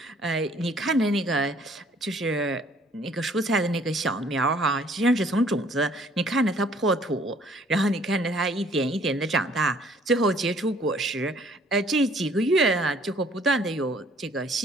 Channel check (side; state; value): both; normal; correlation 0.59